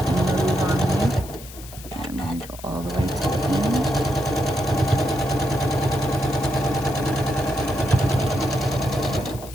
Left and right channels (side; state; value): left; noise; hiss, 17 dB below the sound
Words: on me. And I'm going to go all the way to the